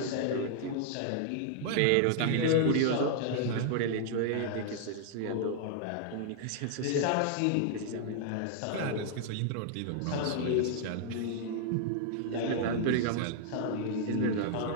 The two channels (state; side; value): different; both; correlation 0.00